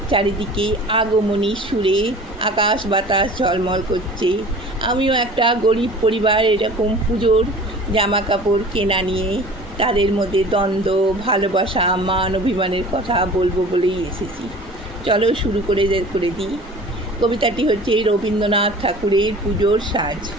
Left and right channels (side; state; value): both; normal; correlation 0.43